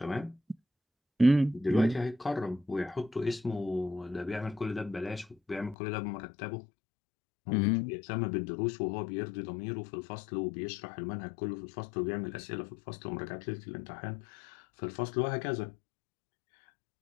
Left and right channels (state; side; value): drops out; right; at 5.8 s